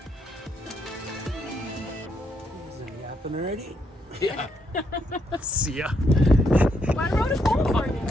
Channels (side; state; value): both; normal; correlation 0.76